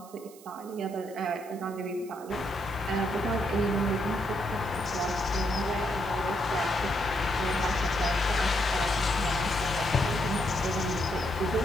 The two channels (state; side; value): noise; right; hiss, 22 dB below the sound